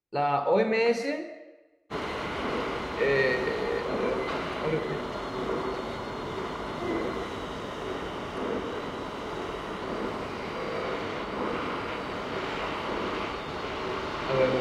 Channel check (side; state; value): both; identical; correlation 1.00